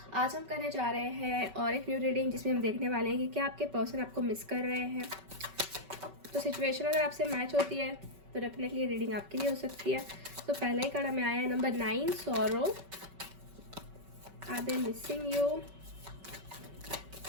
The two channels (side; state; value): left; late; 5.2 ms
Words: आज हम करने जा रहे हैं और एक न्यू रीडिंग जिसमें हम देखने वाले हैं कि क्या आपके पर्सन आपको मिस कर रहे हैं। तो सिचुएशन अगर आपसे मैच होती है तो डेफिनेटली रीडिंग आपके लिए हो सकती है। तो पहला ही कार्ड हमें आया है number 9, sorrow. Are they missing you?